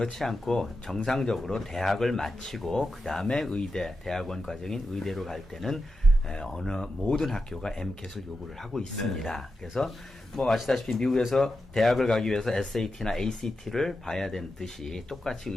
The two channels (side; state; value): both; normal; correlation 0.90